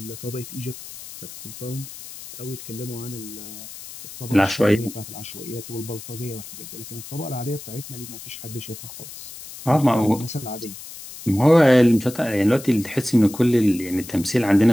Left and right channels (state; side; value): noise; left; hiss, 14 dB below the sound